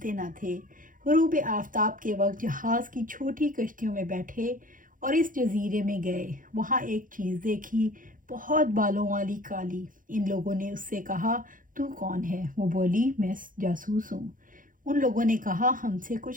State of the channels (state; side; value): late; left; 0.39 ms